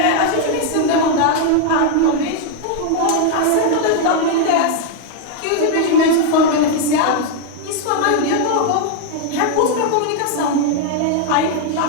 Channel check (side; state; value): both; different; correlation 0.00